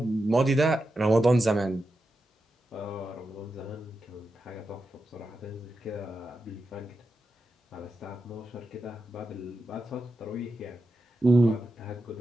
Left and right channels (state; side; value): normal; both; correlation 0.89